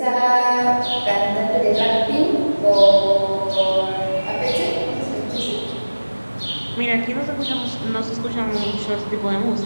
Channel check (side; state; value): both; inverted; correlation -1.00